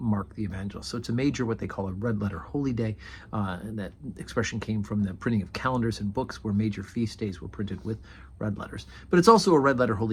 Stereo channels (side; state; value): both; identical; correlation 1.00